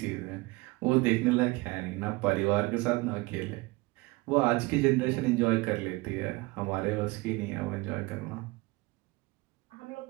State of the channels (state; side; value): quieter; left; 23.5 dB